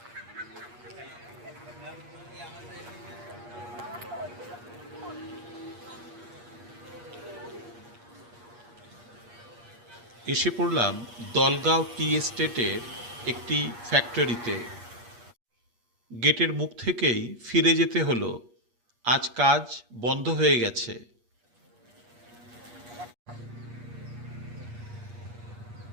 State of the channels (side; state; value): left; late; 8.4 ms